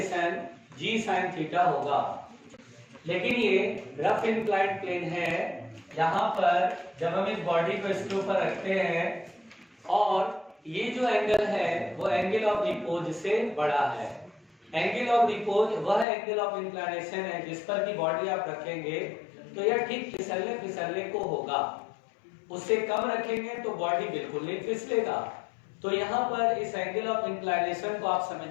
g sin थीटा होगा। लेकिन ये रफ इंक्लाइंड प्लेन है, यहां पर जब हम इस बॉडी को इसके ऊपर रखते हैं और ये जो एंगल है वो एंगल ऑफ रिपोज से बड़ा है। एंगल ऑफ रिपोज वह एंगल ऑफ इंक्लिनेशन है जिस पर की बॉडी आप रखेंगे तो यह ठीक फिसलने फिसलने को होगा, उससे कम रखेंगे तो बॉडी बिल्कुल नहीं फिसलेगा। तो यहाँ पर इस एंगल ऑफ इंक्लिनेशन को आप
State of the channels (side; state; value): right; drops out; at 16.1 s